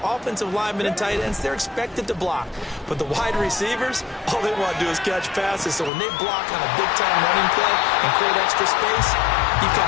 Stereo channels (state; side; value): drops out; right; at 5.9 s